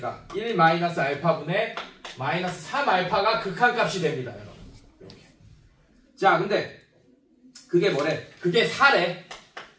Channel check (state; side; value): identical; both; correlation 1.00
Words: 1 마이너스 알파분의 마이너스 3알파가 극한값이 됩니다. 여러분 이렇게. 자 근데 그게 뭐래? 그게 4래.